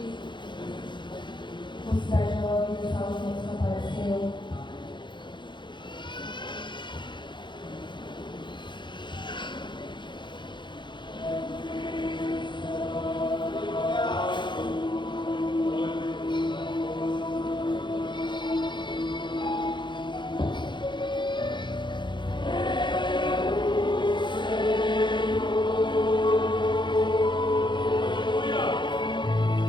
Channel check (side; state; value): right; late; 0.23 ms